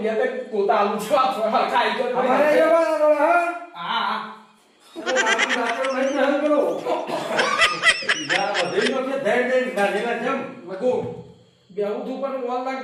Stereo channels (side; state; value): both; identical; correlation 1.00